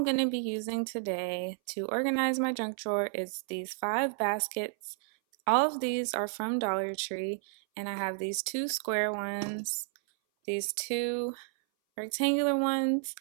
going to be using today to organize my junk drawer is these 5 baskets. All of these are from Dollar Tree, and I have these 2 square ones, these 2 rectangular ones,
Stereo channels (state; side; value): silent; left; 57 dB below the other